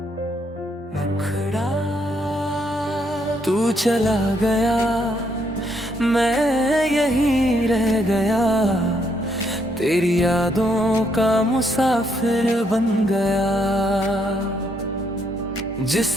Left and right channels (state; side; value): normal; both; correlation 0.73